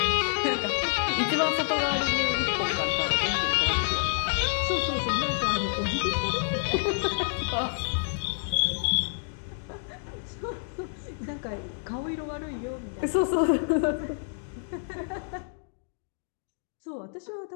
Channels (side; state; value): right; silent; digital silence